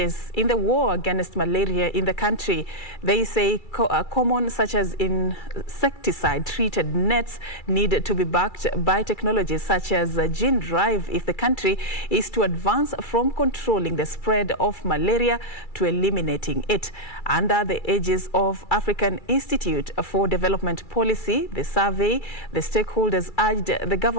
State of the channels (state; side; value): late; right; 2.3 ms